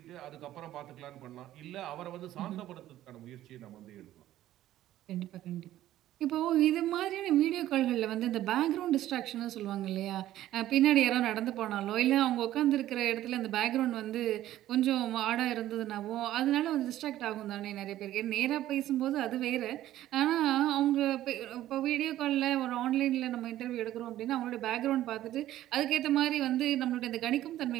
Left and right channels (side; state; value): left; quieter; 13.6 dB